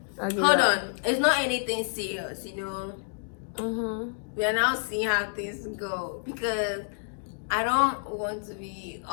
Okay, Hold on. It's not anything serious, you know. We are now seeing how things go because I don't want to be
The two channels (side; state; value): right; silent; digital silence